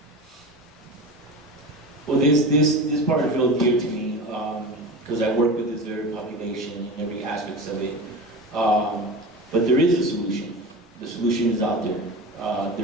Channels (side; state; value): both; normal; correlation 0.29